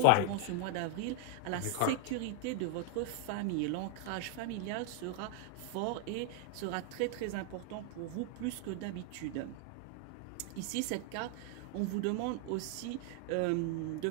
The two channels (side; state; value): both; different; correlation 0.00